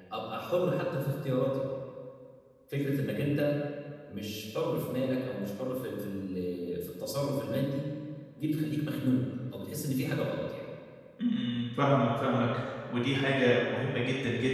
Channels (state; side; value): identical; both; correlation 1.00